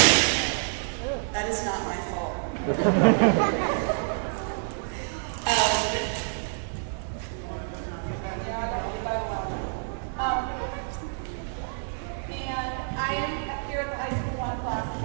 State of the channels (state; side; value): silent; left; digital silence